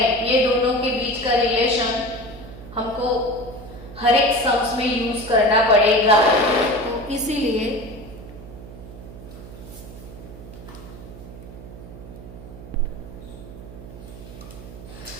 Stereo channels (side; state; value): right; noise; hum, 15 dB below the sound